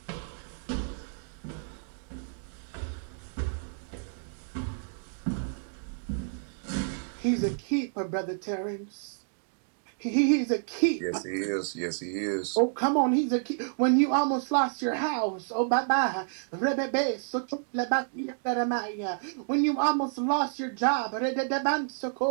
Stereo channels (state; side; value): silent; left; digital silence